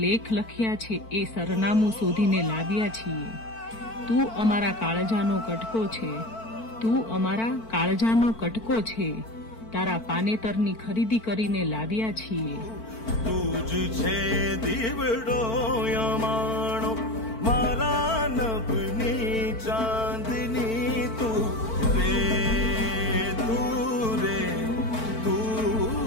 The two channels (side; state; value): right; late; 4.5 ms